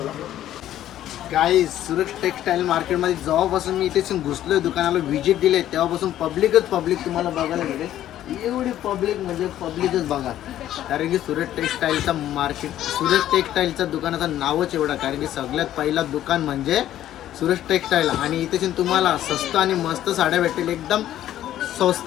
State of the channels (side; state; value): right; quieter; 12.4 dB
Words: आहे. गाईज, सुरत टेक्सटाईल मार्केटमध्ये जेव्हापासून मी इथे घुसलोय, दुकानाला व्हिजिट दिले, तेव्हापासून पब्लिक तुम्हाला बघायला मिळेल. एवढी पब्लिक म्हणजे पब्लिकच बघा. कारण की सुरत टेक्सटाईलचा मार्केट, सुरत टेक्सटाईलचं दुकानाचं नावच एवढं. कारण की सगळ्यात पहिला दुकान म्हणजे सुरत टेक्सटाईल. आणि इथे तुम्हाला स्वस्त आणि मस्त साड्या भेटतील. एकदम